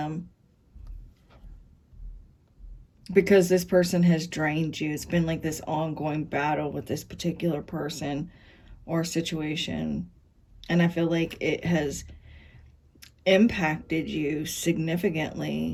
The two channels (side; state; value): both; identical; correlation 1.00